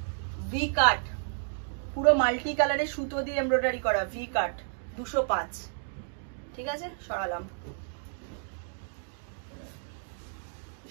ভি কাট, পুরো মাল্টি কালারের সুতো দিয়ে এমব্রয়ডারি করা, ভি কাট, 205, ঠিক আছে, সরালাম।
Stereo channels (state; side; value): silent; left; digital silence